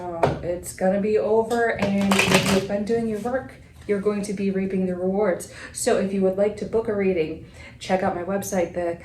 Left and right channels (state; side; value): identical; both; correlation 1.00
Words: it's gonna be over, and if you've been doing your work, you're going to be reaping the rewards. So if you would like to book a reading, check out my website,